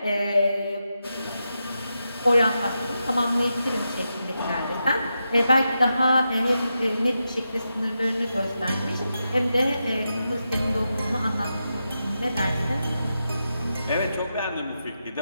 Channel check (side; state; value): both; inverted; correlation -0.88